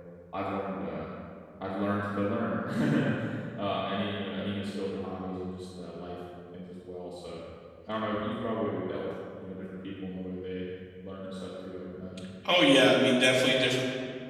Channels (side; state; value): both; identical; correlation 1.00